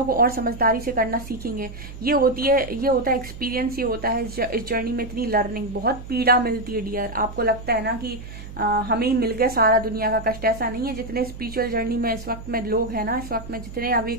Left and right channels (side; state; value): right; noise; hum, 13 dB below the sound